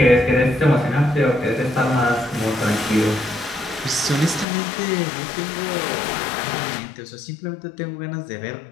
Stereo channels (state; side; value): drops out; right; at 4.5 s